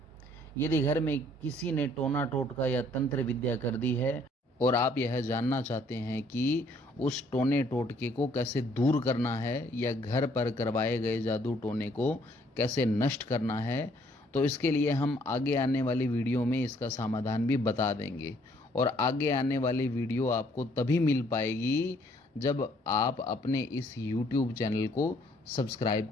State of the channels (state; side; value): normal; both; correlation 0.63